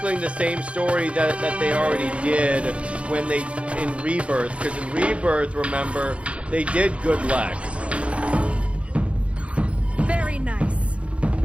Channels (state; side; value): late; left; 0.061 ms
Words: the same story that they already did when they in Rebirth. Because in Rebirth, remember, they did good Lex. Very nice.